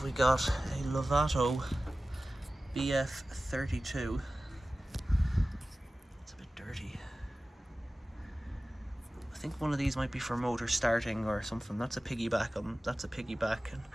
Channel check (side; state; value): both; normal; correlation 0.96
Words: we got? A Lovato BF32. It's a bit dirty. I think one of these might be for motor starting or something. That's a piggyback. That's a piggyback. And